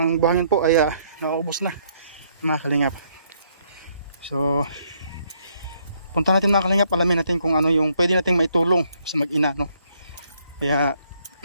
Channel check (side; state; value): both; inverted; correlation -0.70